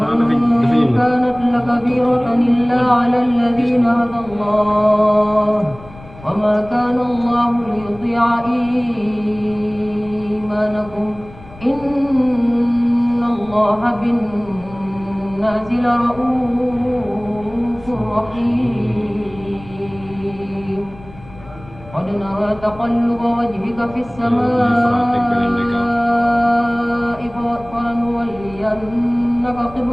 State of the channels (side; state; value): left; noise; rumble, 20 dB below the sound